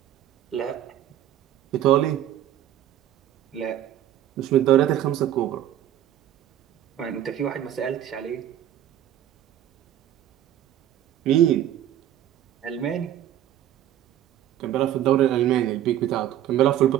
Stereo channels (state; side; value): quieter; left; 11.7 dB